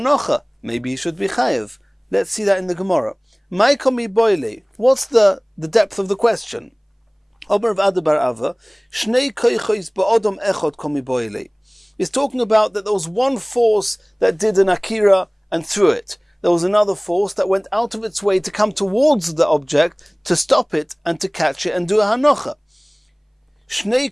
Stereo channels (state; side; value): identical; both; correlation 1.00